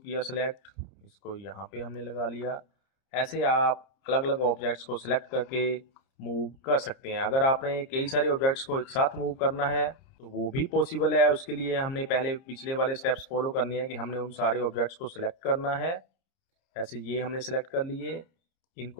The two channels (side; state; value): right; late; 30 ms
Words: सेलेक्ट, इसको यहाँ पे हमने लगा लिया। ऐसे आप अलग अलग ऑब्जेक्ट्स को सिलेक्ट करके मूव कर सकते हैं। अगर आपने कई सारे ऑब्जेक्ट्स को एक साथ मूव करना है तो वो भी पॉसिबल है। उसके लिए हमने पहले पिछले वाले स्टेप्स फॉलो करने हैं कि हमने उन सारे ऑब्जेक्ट्स को सिलेक्ट करना है। ऐसे ये हमने सिलेक्ट कर लिए,